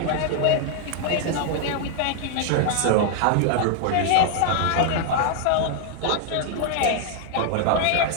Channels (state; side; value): different; both; correlation 0.00